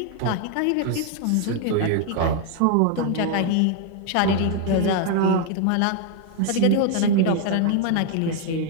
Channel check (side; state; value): both; different; correlation 0.00